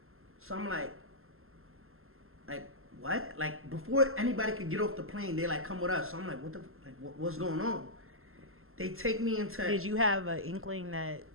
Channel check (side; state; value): left; late; 0.61 ms